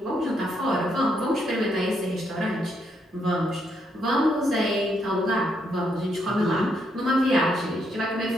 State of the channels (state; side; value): normal; both; correlation 0.76